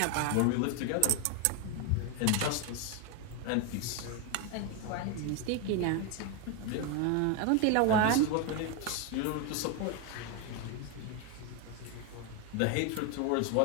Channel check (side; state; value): both; different; correlation 0.01